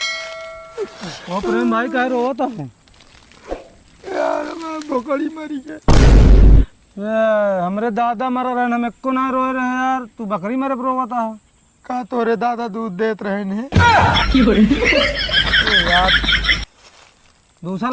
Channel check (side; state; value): both; identical; correlation 1.00